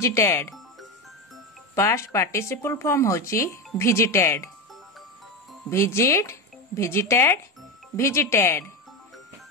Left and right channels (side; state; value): both; normal; correlation 0.16